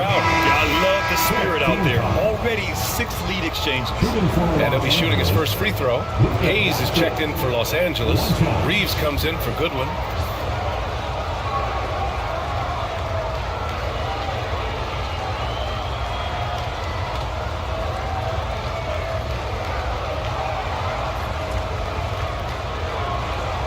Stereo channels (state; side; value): identical; both; correlation 1.00